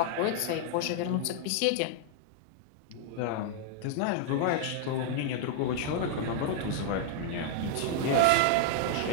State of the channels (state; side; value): different; both; correlation 0.00